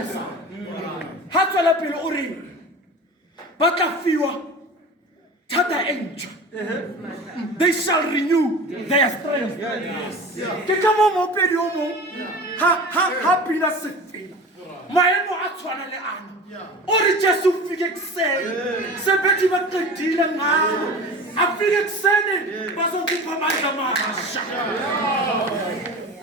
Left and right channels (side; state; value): both; normal; correlation 0.35